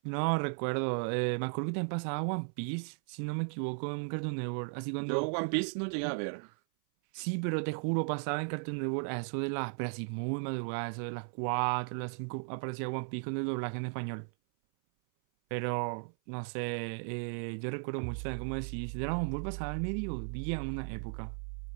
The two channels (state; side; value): silent; left; 54 dB below the other